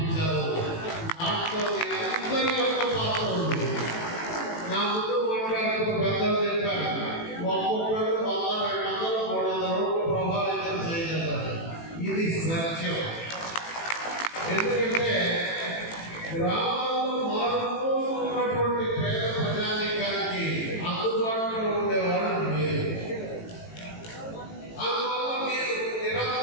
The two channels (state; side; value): late; right; 18 ms